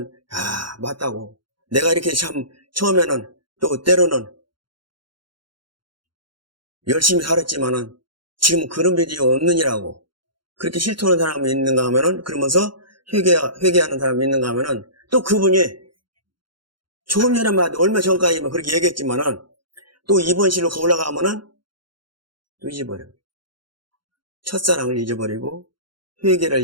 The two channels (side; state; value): left; late; 0.72 ms